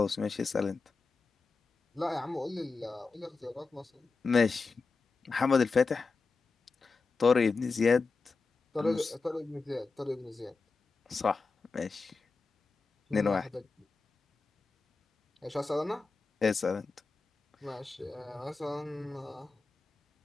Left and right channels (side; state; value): right; quieter; 4.2 dB